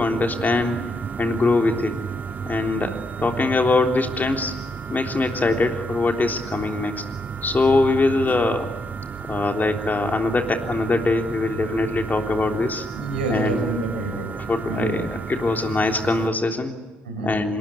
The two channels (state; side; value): normal; both; correlation 0.77